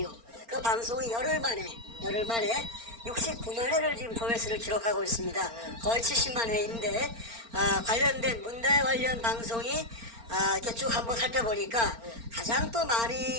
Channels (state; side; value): late; left; 4.4 ms